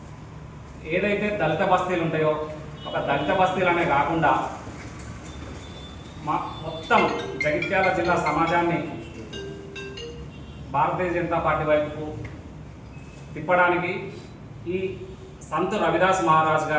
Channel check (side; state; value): both; identical; correlation 1.00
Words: ఏదైతే దళిత బస్తీలు ఉంటాయో ఒక దళిత బస్తీలనే కాకుండా మొత్తం జగిత్యాల జిల్లా సమాజాన్ని భారతీయ జనతా పార్టీ వైపుకు తిప్పడానికి ఈ సంత్ రవిదాస్ మహారాజ్